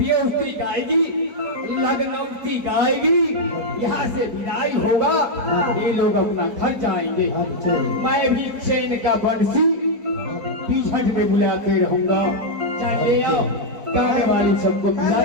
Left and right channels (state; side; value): late; left; 4.6 ms